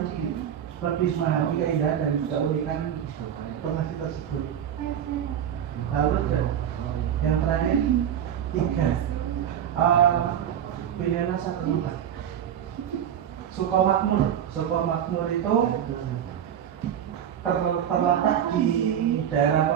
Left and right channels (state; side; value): quieter; left; 9.6 dB